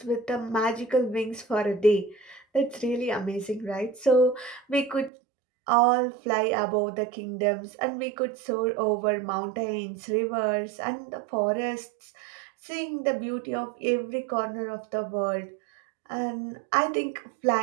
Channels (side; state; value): left; drops out; at 5.1 s